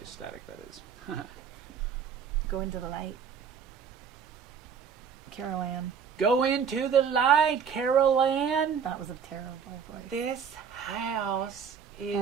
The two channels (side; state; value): left; quieter; 7.0 dB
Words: static, that is. Go into the light. Carol Ann. Go into the light, Carol Ann. That was a terrible voice. This house